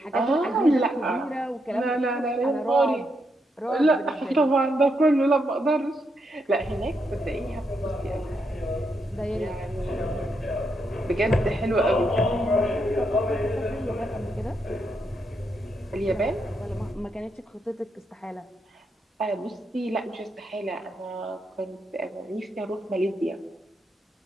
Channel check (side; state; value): both; normal; correlation 0.80